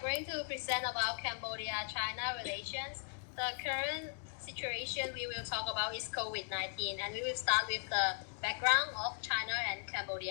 going to present about Cambodia-China relations. The current situation we will talk about is COVID-19, and we will start with the background of China and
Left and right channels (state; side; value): silent; right; 52 dB below the other